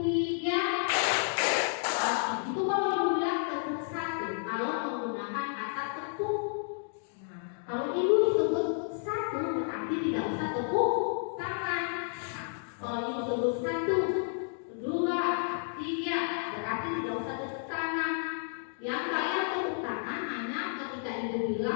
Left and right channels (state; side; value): silent; right; 57 dB below the other